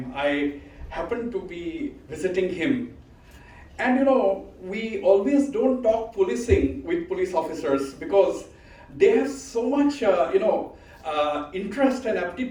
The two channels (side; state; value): both; identical; correlation 1.00